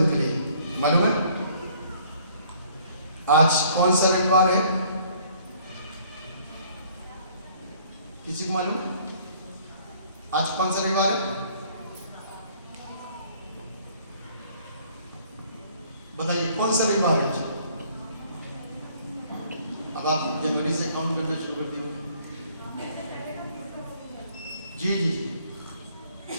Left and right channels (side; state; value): both; inverted; correlation -0.59